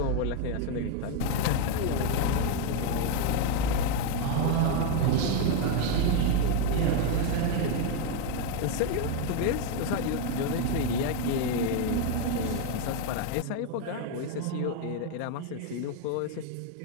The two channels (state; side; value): different; both; correlation 0.01